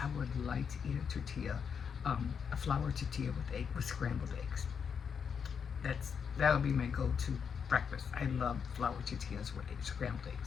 would like to eat a tortilla, a flour tortilla with scrambled eggs. That would be my go-to breakfast. I love flour tortillas with scrambled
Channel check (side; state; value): right; quieter; 6.7 dB